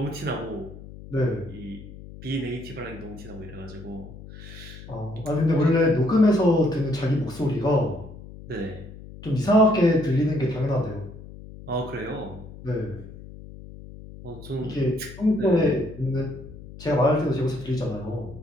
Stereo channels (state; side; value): noise; left; hum, 15 dB below the sound